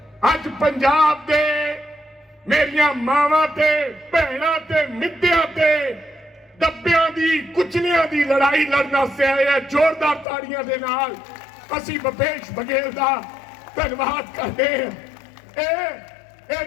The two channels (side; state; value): right; drops out; at 10.2 s